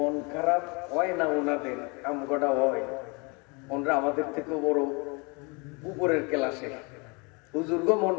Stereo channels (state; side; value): quieter; right; 30.4 dB